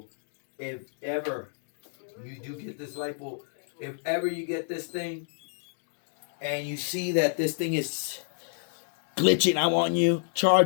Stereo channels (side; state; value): right; silent; digital silence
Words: if ever you do get this light bulb, if ever you get this thing and you see that this thing is glitching out on you,